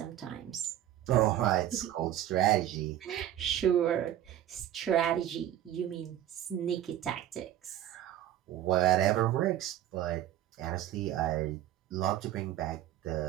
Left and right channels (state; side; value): quieter; left; 12.1 dB